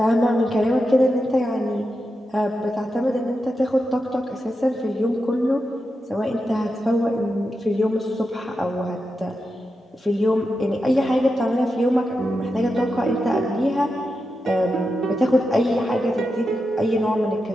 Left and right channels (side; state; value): both; normal; correlation 0.88